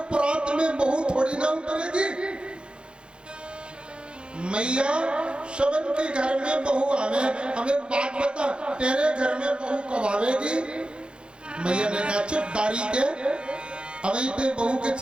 परात में बहू थोड़ी ना उतरेगी। मैया शवन के घर में बहू आवे, हमें बात बता तेरे घर में बहू कब आवेगी। मैया ने कहा चुप दारी के, अभी ते बहू के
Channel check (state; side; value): late; left; 0.054 ms